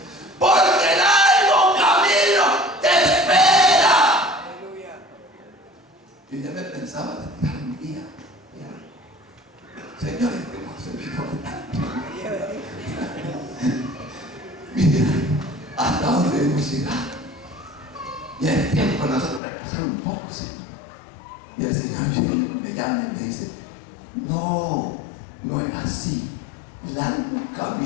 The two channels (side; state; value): right; drops out; at 19.4 s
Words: Porque el largo camino te espera. Yo ya me pensaba de tirar un día. Señores, que hemos servido tanto. Mira hasta dónde hemos llegado. Y es tiempo de nosotros repasar un poco, Señor. Y el Señor me llama y me dice: no, no es así. Largo